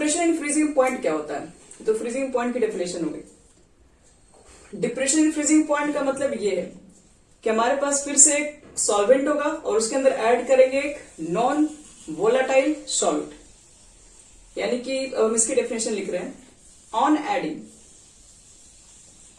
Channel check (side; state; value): both; identical; correlation 1.00